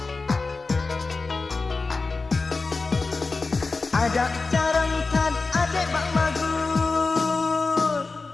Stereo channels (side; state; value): right; quieter; 3.9 dB